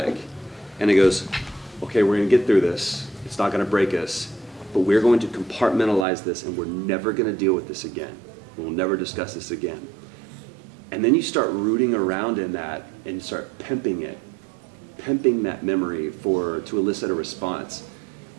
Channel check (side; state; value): left; drops out; at 6.1 s